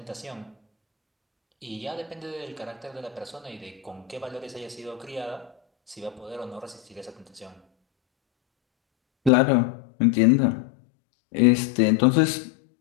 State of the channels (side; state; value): right; drops out; at 9.3 s